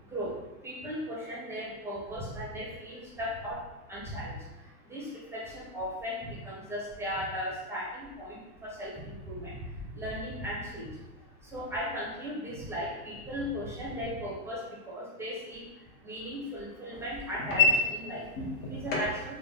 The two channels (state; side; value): normal; both; correlation -0.03